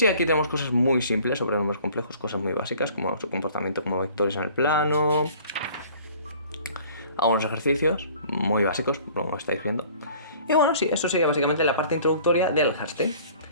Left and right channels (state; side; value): inverted; both; correlation -0.51